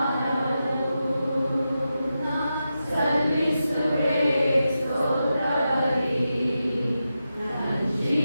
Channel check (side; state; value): both; inverted; correlation -0.89